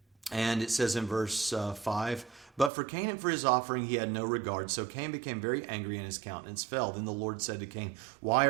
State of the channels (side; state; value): left; drops out; at 2.7 s